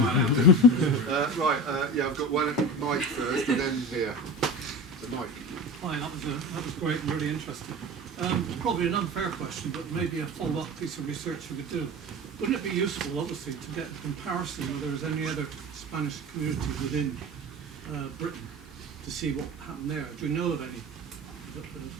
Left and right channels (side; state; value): both; normal; correlation 0.31